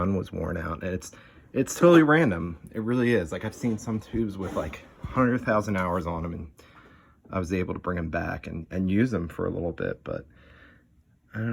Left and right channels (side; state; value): both; identical; correlation 1.00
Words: was worn out. And it's totally random. It really is. Like, I've seen some tubes with like 100,000 hours on them, and I was able to bring them back and use them for a little bit, but I don't